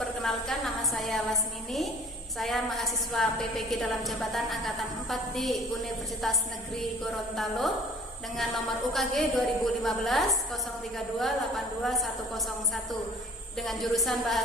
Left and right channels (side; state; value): both; normal; correlation 0.50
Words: Perkenalkan, nama saya Lasmini. Saya mahasiswa PPG dalam jabatan Angkatan 4 di Universitas Negeri Gorontalo dengan nomor UKG 2015 032 82101 dengan jurusan